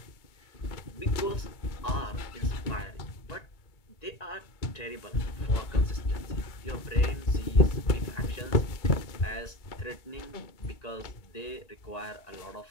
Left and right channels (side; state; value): right; late; 2.2 ms